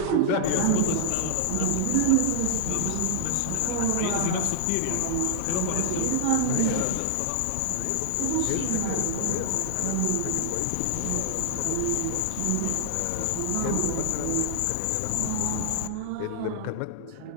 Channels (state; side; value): different; both; correlation -0.01